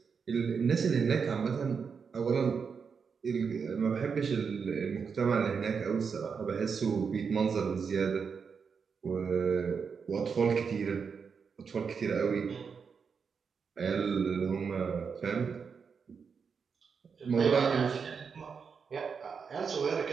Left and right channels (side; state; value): left; quieter; 5.9 dB